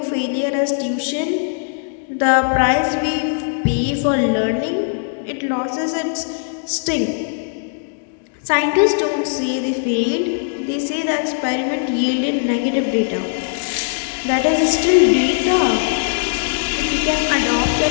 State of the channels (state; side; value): silent; right; digital silence